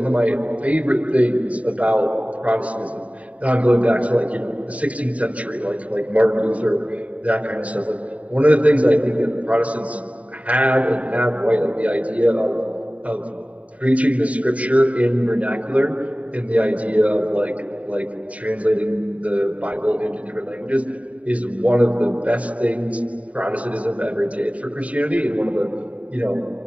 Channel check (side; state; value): left; late; 0.067 ms